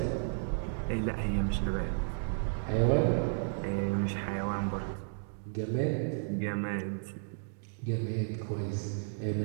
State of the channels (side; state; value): left; silent; digital silence